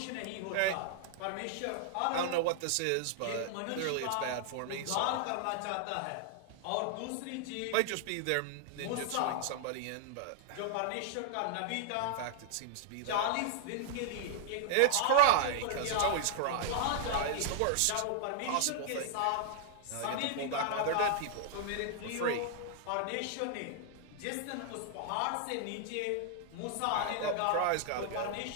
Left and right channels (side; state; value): both; different; correlation 0.00